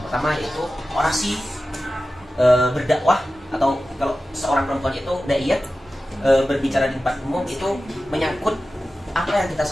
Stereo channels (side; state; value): both; normal; correlation 0.94